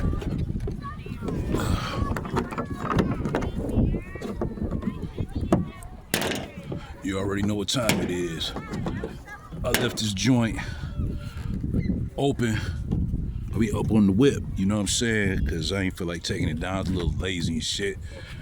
You already know what time it is. I left this joint open. I'll be up on the whip, you know what I'm saying? Because I ain't feel like taking it down. It's a little lazy and shit.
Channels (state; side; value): identical; both; correlation 1.00